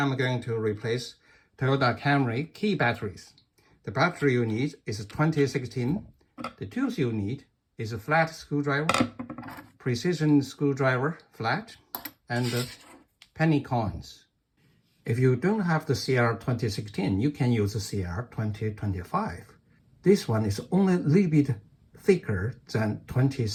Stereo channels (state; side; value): identical; both; correlation 1.00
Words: going to replace Toyota Camry key batteries. The battery you need is 2016. The tools you need is a flat screwdriver, precision screwdriver flat, and penny coins. If you don't have the CR 2016, you can use the CR 2025. This one is only a little bit thicker than